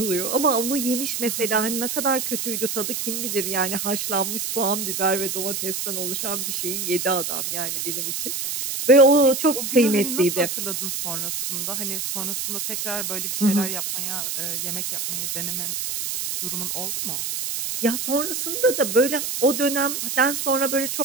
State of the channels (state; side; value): noise; right; hiss, 3 dB below the sound